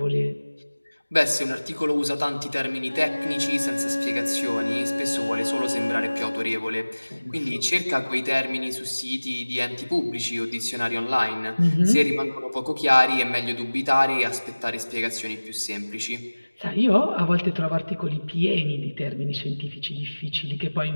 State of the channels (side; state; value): both; inverted; correlation -1.00